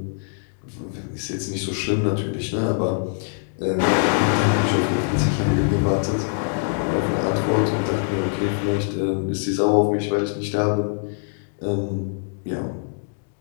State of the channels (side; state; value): right; silent; digital silence